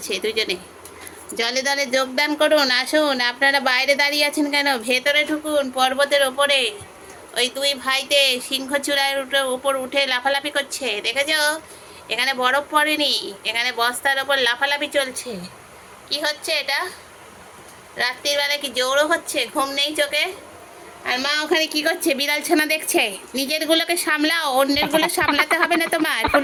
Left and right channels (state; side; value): identical; both; correlation 1.00